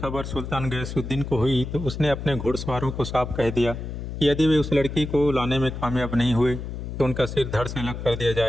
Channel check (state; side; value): noise; left; hum, 7 dB below the sound